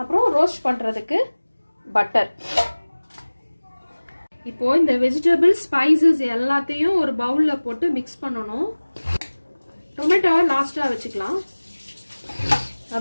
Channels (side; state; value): both; inverted; correlation -1.00